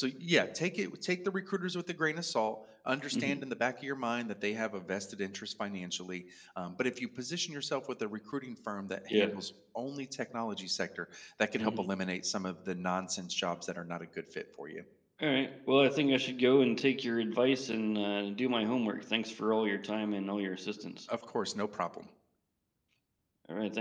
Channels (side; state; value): both; identical; correlation 1.00